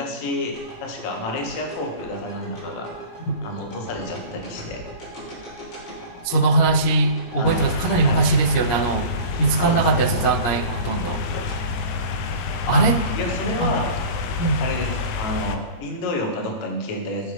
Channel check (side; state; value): right; late; 17 ms